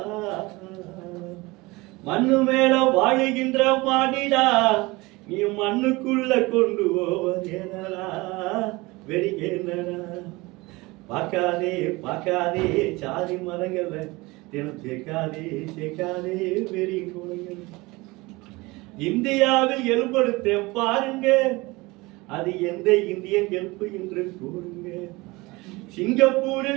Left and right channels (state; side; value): quieter; left; 22.7 dB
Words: மண்ணு மேல வாழுகின்ற மாடிடா, நீ மண்ணுக்குள்ள கொண்டு போவது என்னடா வெறிகேனடா. பார்க்காதே பார்க்காதே சாதி மரங்களை தினம் சேர்க்காதே சேர்க்காதே வெறி குணங்கள். இந்தியாவில் எலும்படுத்தேன் பாருங்க, அது எந்த இந்தியன் எலும்பு என்று கூறுங்க.